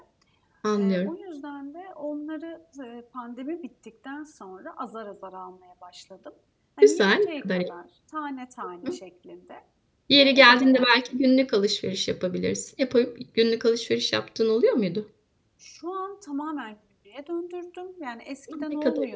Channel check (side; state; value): both; identical; correlation 1.00